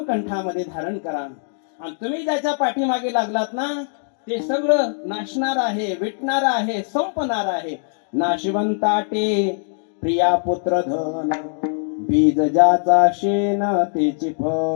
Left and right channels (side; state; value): right; silent; digital silence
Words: धारण करा. आणि तुम्ही ज्याच्या पाठीमागे लागलात ना ते सगळं नाशणार आहे, विटणार आहे, संपणार आहे. नाशिवंताटे प्रिया पुत्र धन, बीज ज्याचा शेन तेची